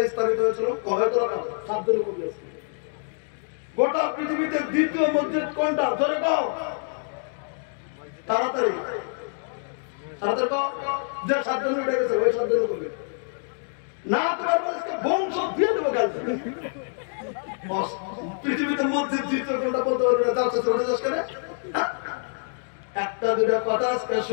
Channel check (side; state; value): right; silent; 59 dB below the other